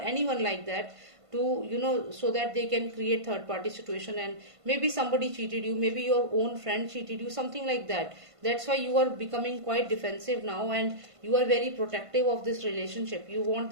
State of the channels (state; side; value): late; left; 1.5 ms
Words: like that, to so that they can create third party situation, and maybe somebody cheated you, maybe your own friend cheated you, something like that. That's why you are becoming quite defensive now, and you are very protective of this relationship. You want